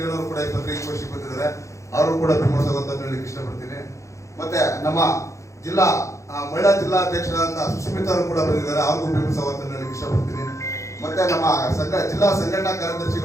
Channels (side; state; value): right; late; 0.15 ms